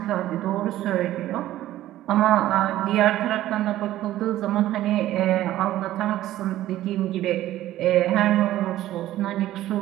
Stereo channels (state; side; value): quieter; left; 14.2 dB